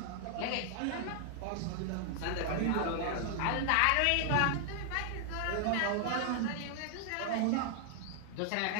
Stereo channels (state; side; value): different; both; correlation 0.00